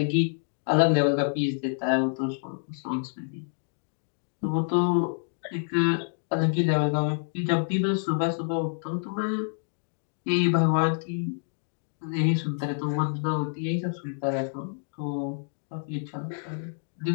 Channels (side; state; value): right; silent; digital silence